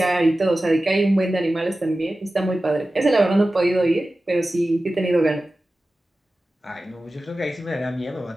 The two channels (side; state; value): both; normal; correlation 0.95